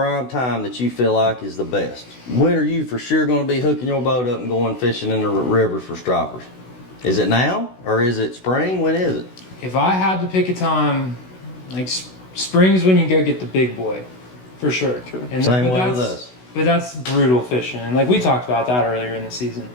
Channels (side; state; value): right; late; 16 ms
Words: time that you feel like is the best? When are you for sure going to be hooking your boat up and going fishing in the river for stripers? Is it now or is it spring? When is it? If I had to pick a time, like spring's when you go get the big boy, for sure. And Same way with us. But that's brutal fishing, and like we talked about that earlier in the season.